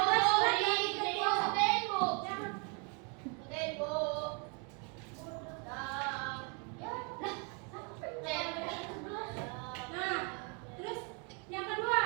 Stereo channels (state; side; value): quieter; left; 35.1 dB